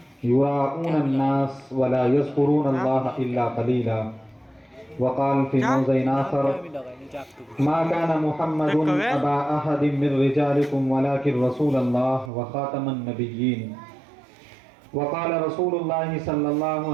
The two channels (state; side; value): drops out; left; at 12.3 s